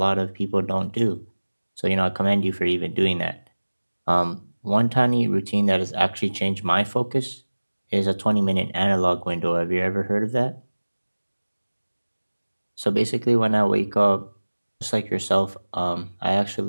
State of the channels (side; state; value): both; inverted; correlation -1.00